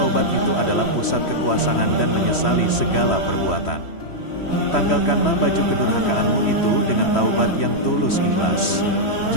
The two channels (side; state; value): right; late; 3.1 ms